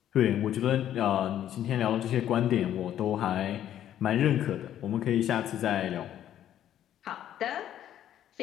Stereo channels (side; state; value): right; quieter; 11.1 dB